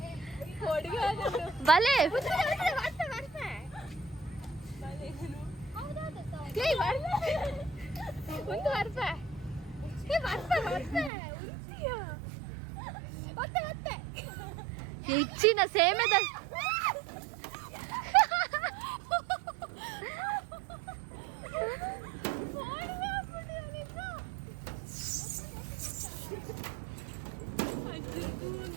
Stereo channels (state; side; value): drops out; left; at 11.1 s